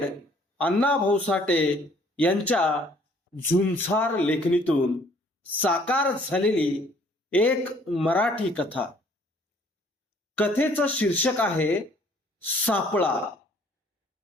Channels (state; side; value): normal; both; correlation 0.59